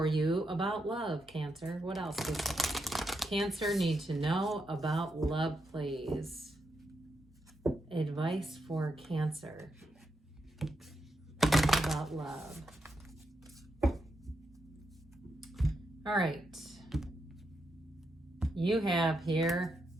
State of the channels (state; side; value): normal; both; correlation 0.83